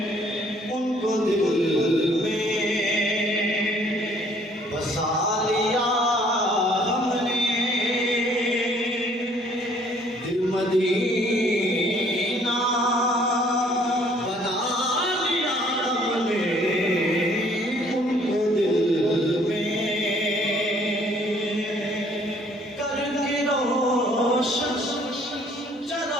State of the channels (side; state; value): both; normal; correlation 0.60